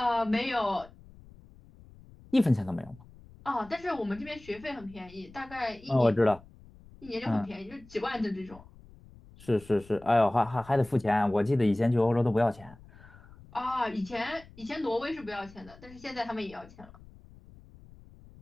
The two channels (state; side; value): noise; left; rumble, 22 dB below the sound